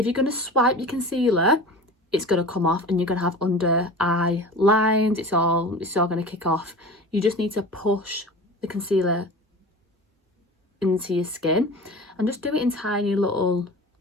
you're going to swipe your concealer, it's going to come off and you're going to have under eye lines. It's all going to kick off. You just need to push the concealer into your skin, and just do it in tiny little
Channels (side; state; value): both; normal; correlation 0.36